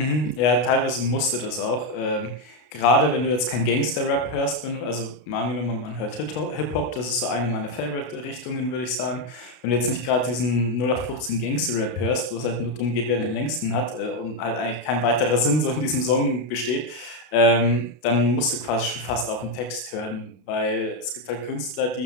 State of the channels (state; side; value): late; right; 32 ms